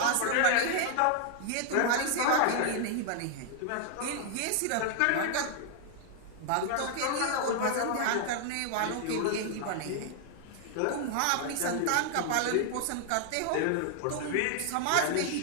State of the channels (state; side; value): different; both; correlation 0.00